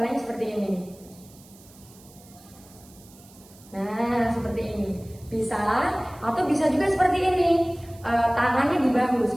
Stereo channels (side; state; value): right; noise; hiss, 24 dB below the sound